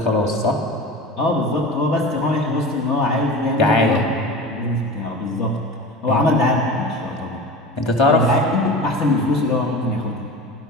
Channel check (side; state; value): both; normal; correlation 0.33